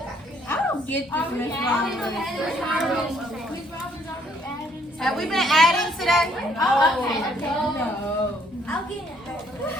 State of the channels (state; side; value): normal; both; correlation 0.66